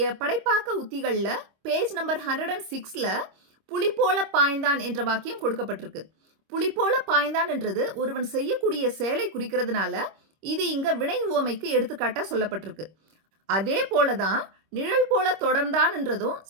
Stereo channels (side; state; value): left; late; 26 ms